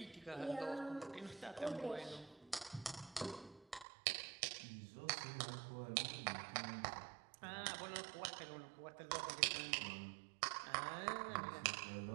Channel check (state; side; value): drops out; left; at 3.9 s